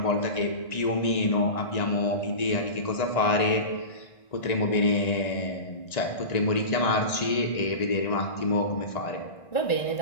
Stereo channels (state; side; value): late; right; 1.9 ms